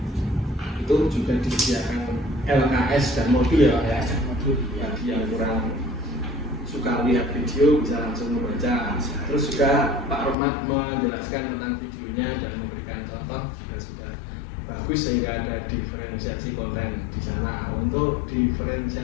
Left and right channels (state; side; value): drops out; right; at 10.4 s